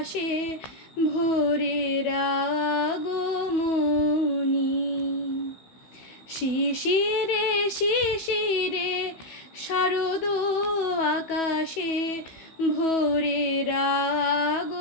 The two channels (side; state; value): right; late; 15 ms